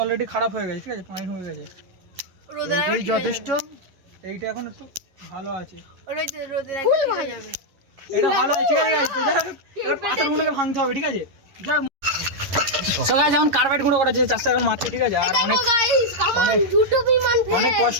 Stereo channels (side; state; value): left; late; 11 ms